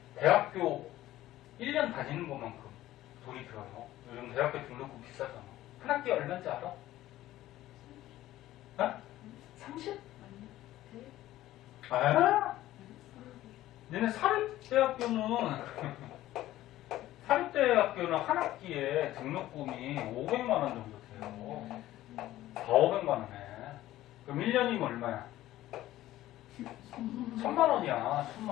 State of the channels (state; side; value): quieter; right; 14.9 dB